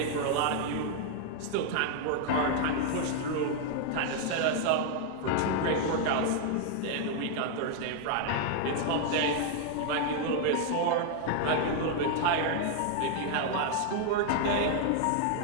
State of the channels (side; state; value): both; different; correlation 0.00